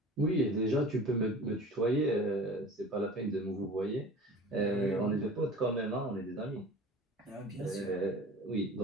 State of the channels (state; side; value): normal; both; correlation 0.41